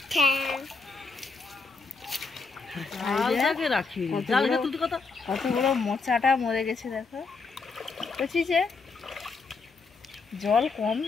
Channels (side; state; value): right; quieter; 4.3 dB